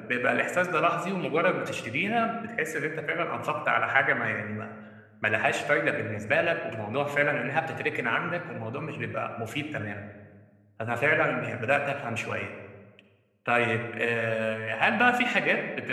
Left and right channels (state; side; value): identical; both; correlation 1.00